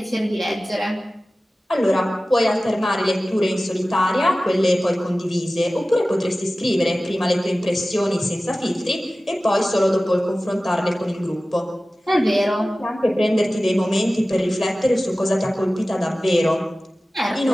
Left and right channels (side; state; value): both; normal; correlation 0.96